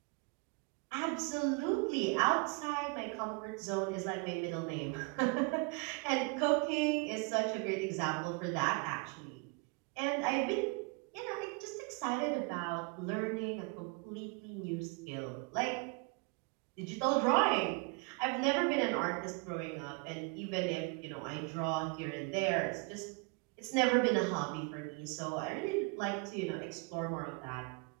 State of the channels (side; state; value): left; quieter; 31.2 dB